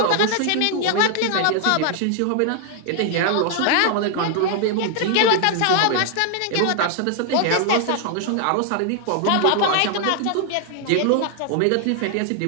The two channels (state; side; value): different; both; correlation 0.00